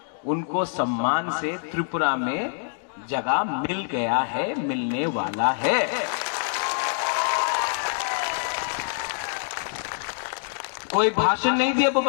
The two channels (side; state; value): right; silent; digital silence